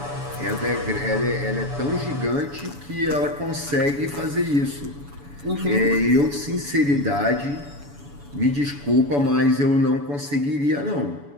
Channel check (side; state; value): left; late; 7.0 ms